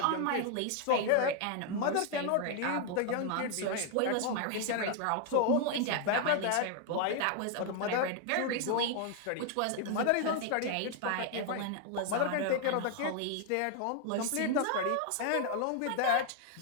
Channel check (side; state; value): both; different; correlation 0.00